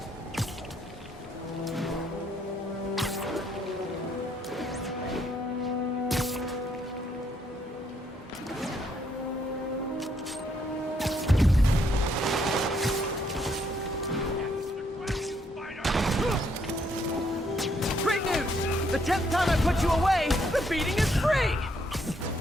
Great news! The 10th time I put you away, the beating is free!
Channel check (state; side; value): normal; both; correlation 0.72